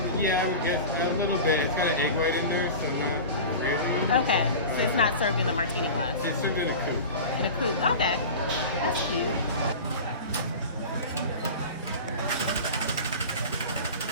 Yeah, I would guess a little bit. It's got an egg white in there, so not crazy. Okay, so it's not served in a martini glass. It's served in a coupe. In a coupe. Okay, that's cute.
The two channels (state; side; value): inverted; both; correlation -0.32